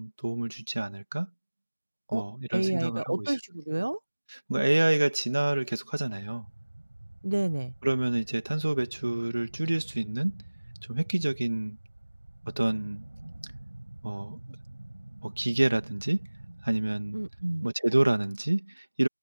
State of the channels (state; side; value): inverted; both; correlation -1.00